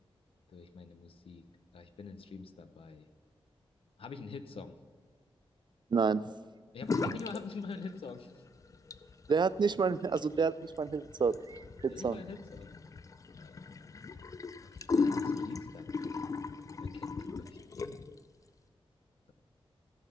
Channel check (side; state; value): both; normal; correlation 0.71